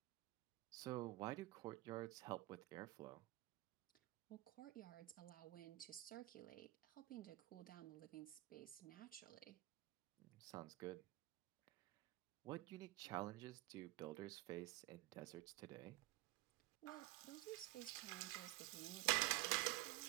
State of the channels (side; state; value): left; quieter; 19.4 dB